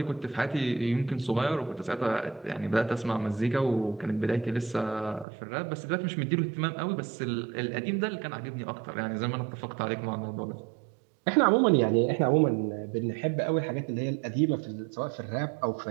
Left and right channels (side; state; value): left; drops out; at 5.2 s